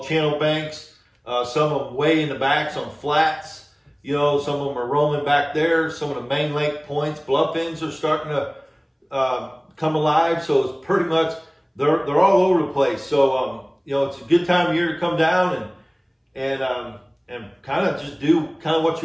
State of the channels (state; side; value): identical; both; correlation 1.00